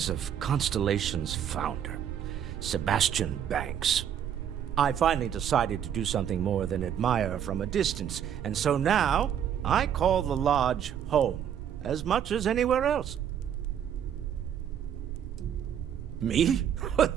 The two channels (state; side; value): quieter; left; 9.2 dB